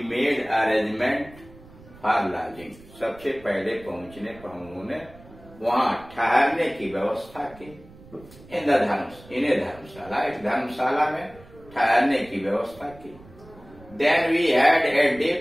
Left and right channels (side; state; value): right; noise; rumble, 22 dB below the sound